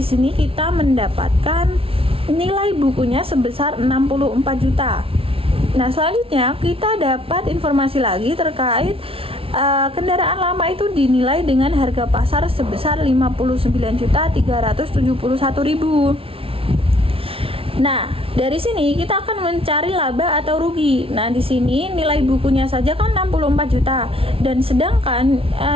sini kita mendapatkan nilai bukunya sebesar 64 juta. Nah, selanjutnya kita dapat informasi lagi terkait kendaraan lama itu dinilai dengan harga pasar sebesar 59.371.000. Nah, dari sini kita akan mencari laba atau rugi. Nah, di sini nilai bukunya saja kan 64 juta dan sedangkan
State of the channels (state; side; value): late; left; 0.26 ms